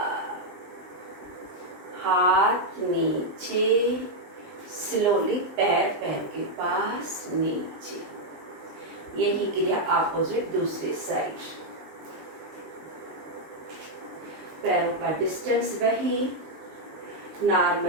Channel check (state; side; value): late; left; 19 ms